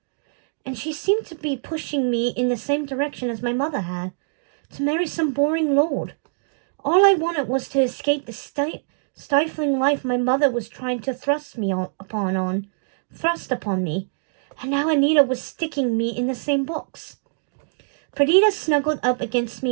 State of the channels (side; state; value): left; silent; digital silence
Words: and she seemed to be pushing me in the same direction as my mother had, to marry some boring lord. All I wanted was to escape the stifling life my mother was trying to thrust upon me, and now Anita was sticking me in the same box. Perdita snuggled up against